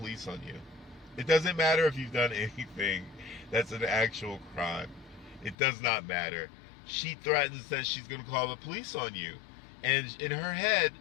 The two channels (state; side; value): drops out; right; at 5.6 s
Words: on you. It doesn't matter if you've done anything that's an actual crime. It does not matter. She threatens that she's going to call the police on you. And in her head,